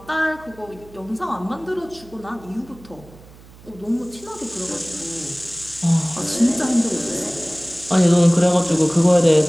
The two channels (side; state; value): right; noise; hum, 22 dB below the sound